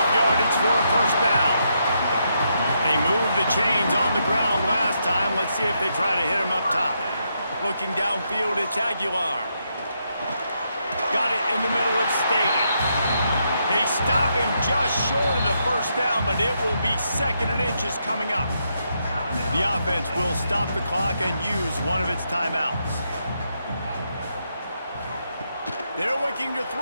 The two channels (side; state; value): both; inverted; correlation -0.79